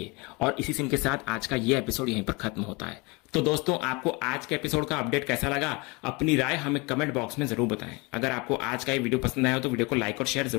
है। और इसी सीन के साथ आज का ये एपिसोड यहीं पर खत्म होता है। तो दोस्तों, आपको आज के एपिसोड का अपडेट कैसा लगा, अपनी राय हमें कमेंट बॉक्स में जरूर बताएं। अगर आपको आज का ये वीडियो पसंद आया हो तो वीडियो को लाइक और शेयर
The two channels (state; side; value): quieter; right; 27.1 dB